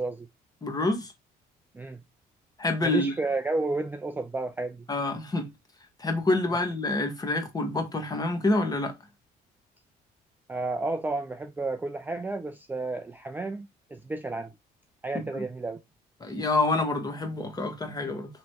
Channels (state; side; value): normal; both; correlation 0.60